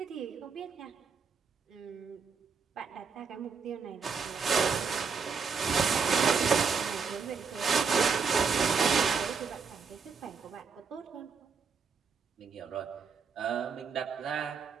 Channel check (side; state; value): left; quieter; 5.6 dB